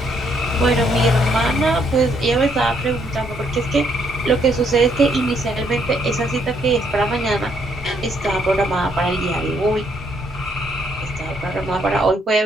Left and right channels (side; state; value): both; normal; correlation 0.71